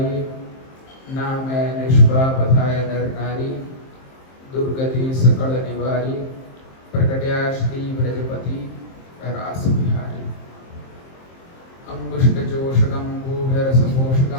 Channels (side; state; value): right; late; 23 ms